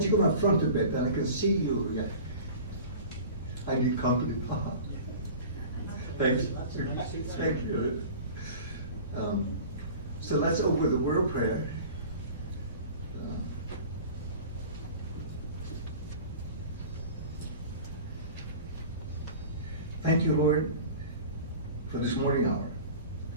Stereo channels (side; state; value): both; inverted; correlation -0.39